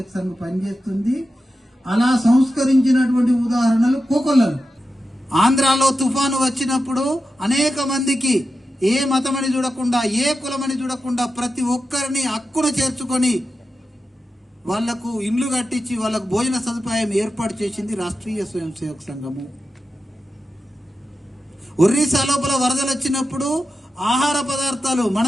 సంఘం పనిచేస్తుంది. అలా సంస్కరించినటువంటి ఉదాహరణలు కోకొల్లలు. ఆంధ్రాలో తుఫాను వచ్చినప్పుడు అనేక మందికి ఏ మతమని చూడకుండా, ఏ కులమని చూడకుండా ప్రతి ఒక్కరిని హక్కున చేర్చుకొని వాళ్లకు ఇండ్లు కట్టించి వాళ్ళకు భోజన సదుపాయం ఏర్పాటు చేసింది రాష్ట్రీయ స్వయం సేవక సంఘము. ఒరిస్సా లోపల వరదలు వచ్చినప్పుడు ఆహార పదార్థాలు మన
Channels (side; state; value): both; normal; correlation 0.91